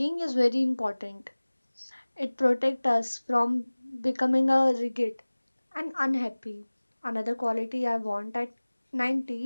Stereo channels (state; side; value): inverted; both; correlation -1.00